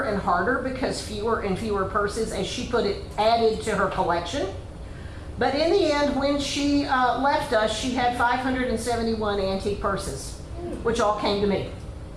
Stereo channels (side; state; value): both; identical; correlation 1.00